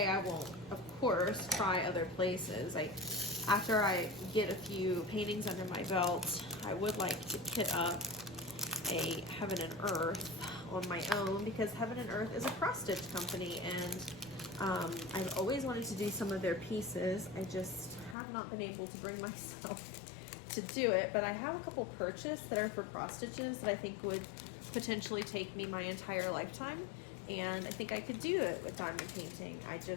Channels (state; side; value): drops out; right; at 18.2 s